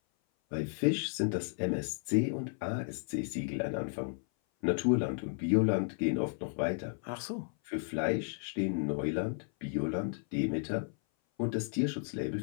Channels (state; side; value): silent; right; 55 dB below the other